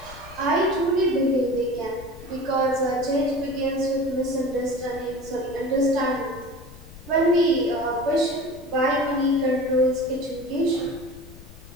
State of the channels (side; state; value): left; noise; rumble, 18 dB below the sound